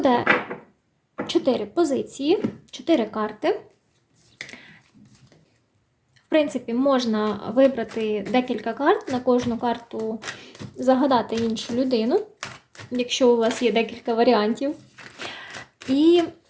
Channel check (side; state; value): both; identical; correlation 1.00